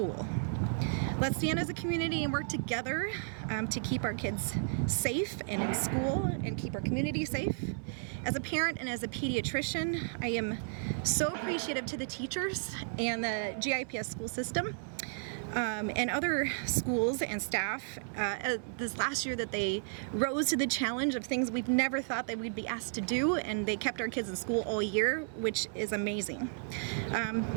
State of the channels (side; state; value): left; silent; 56 dB below the other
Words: Let's stand as a community and work together to keep our kids safe and in school and keep our community safe. As a parent and as a pediatrician, I am so appreciative to the teachers and the GIPS school system and other schools and staff this last year that they rose to the challenge of things we've never thought that we'd be asked to do, and they kept our kids in school all year, which is amazing.